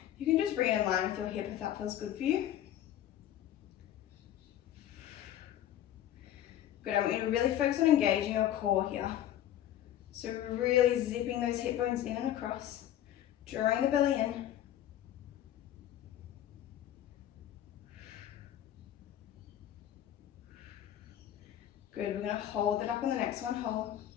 You can just bring it in line with your hip if that feels good for you. Good, I want you to really focus on engaging your core here. So really zipping those hip bones in and across, drawing the belly in. Good, we're going to hold it up on the next one, hold.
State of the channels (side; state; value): right; quieter; 11.8 dB